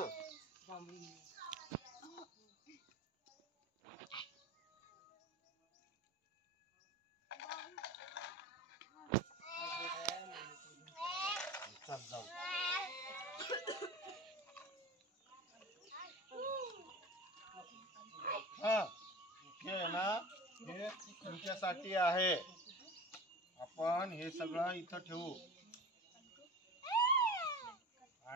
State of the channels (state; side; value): normal; both; correlation 0.34